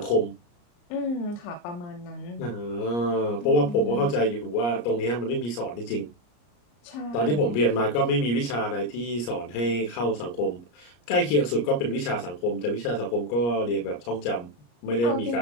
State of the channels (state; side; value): late; right; 34 ms